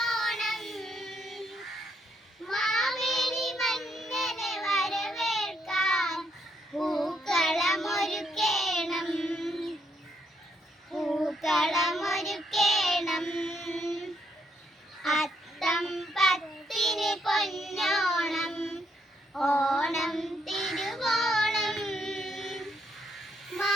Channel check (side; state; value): both; normal; correlation 0.75